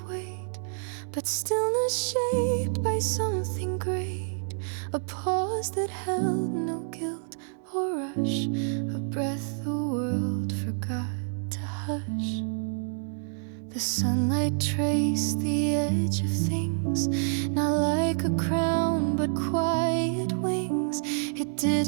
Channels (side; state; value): left; silent; digital silence